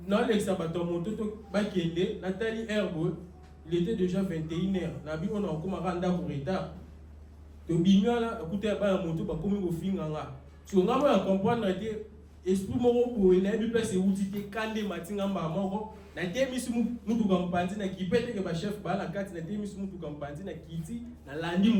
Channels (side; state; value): both; identical; correlation 1.00